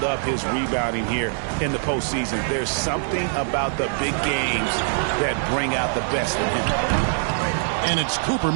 up his rebounding here in the postseason. There's something about the big games that bring out the best in him. And it's Cooper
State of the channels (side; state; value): left; silent; digital silence